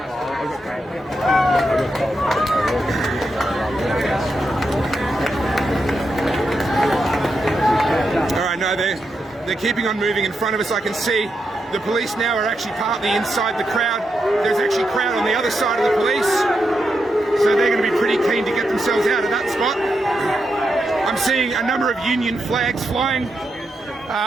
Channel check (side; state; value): both; normal; correlation 0.84